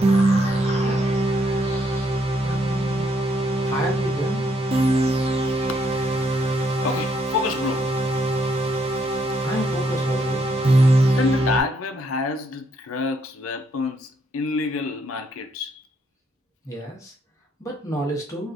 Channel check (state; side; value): normal; both; correlation 0.73